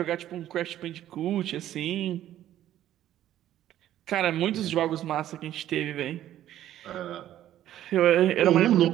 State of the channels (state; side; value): quieter; left; 12.4 dB